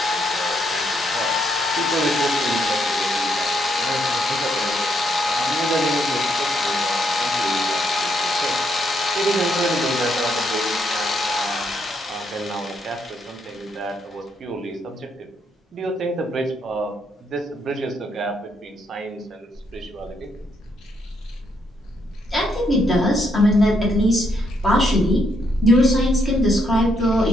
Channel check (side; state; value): both; normal; correlation 0.75